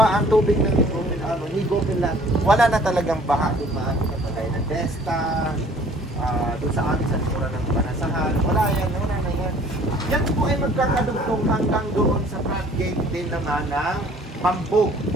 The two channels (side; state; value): both; normal; correlation 0.54